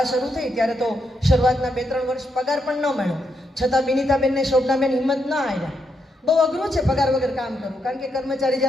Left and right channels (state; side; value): normal; both; correlation 0.80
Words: શરૂ થઈ ત્યારે તો શરૂઆતના 2-3 વર્ષ પગાર પણ ન મળ્યો, છતાં બિનિતાબેનને શોભનાબેન હિંમત ન આવ્યા. બહુ અઘરું છે પગાર વગર કામ કરવું, કારણ કે કર્મચારી